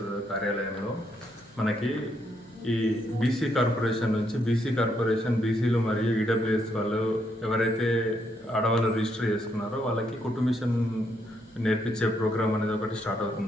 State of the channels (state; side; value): normal; both; correlation 0.75